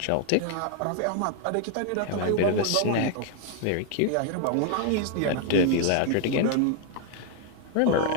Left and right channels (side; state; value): both; different; correlation 0.00